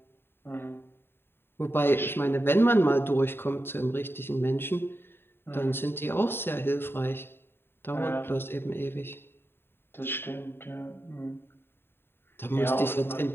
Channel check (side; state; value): right; late; 0.11 ms